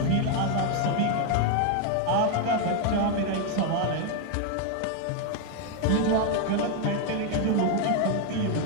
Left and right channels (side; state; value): both; different; correlation 0.01